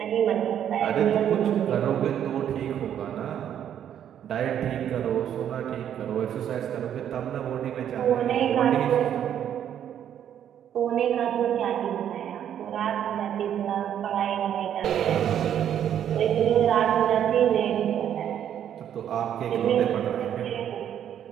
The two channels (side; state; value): left; quieter; 9.8 dB